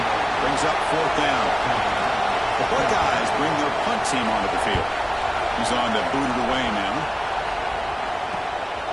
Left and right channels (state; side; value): identical; both; correlation 1.00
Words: brings up 4th down. The Buckeyes bring their punt team onto the field. He's on to boot it away now.